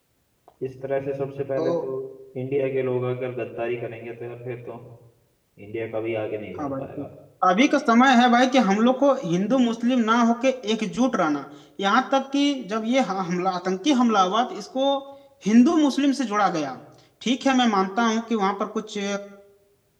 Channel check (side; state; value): both; identical; correlation 1.00